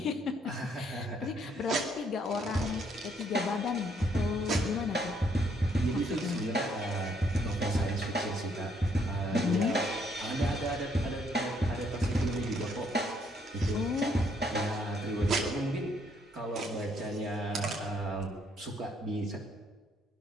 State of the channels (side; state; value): both; normal; correlation 0.69